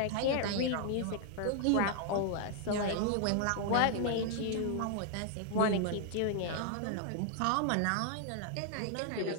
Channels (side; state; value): both; different; correlation 0.00